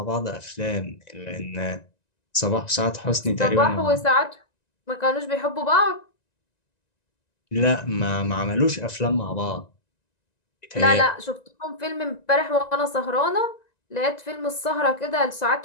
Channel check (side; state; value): right; late; 1.9 ms